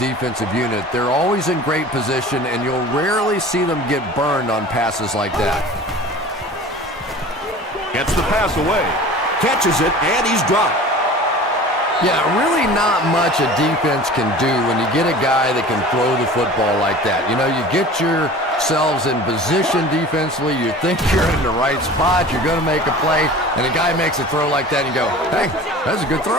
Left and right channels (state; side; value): normal; both; correlation 0.41